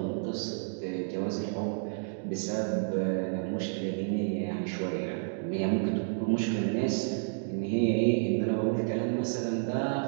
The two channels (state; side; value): silent; left; digital silence